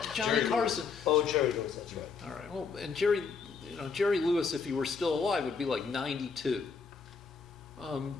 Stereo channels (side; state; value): right; quieter; 5.3 dB